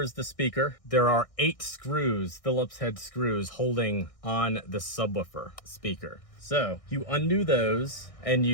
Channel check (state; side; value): late; right; 1.6 ms